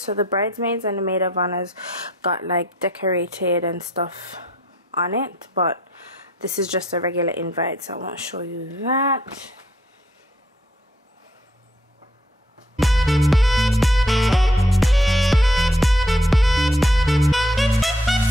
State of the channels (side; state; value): both; normal; correlation 0.66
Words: so the bridesmaids and the maid of honors got like decorated and stuff on it, but this is just a regular invite, so I won't show you that.